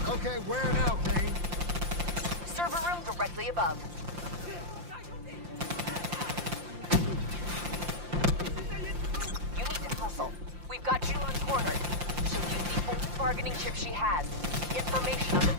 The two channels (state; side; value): late; left; 5.7 ms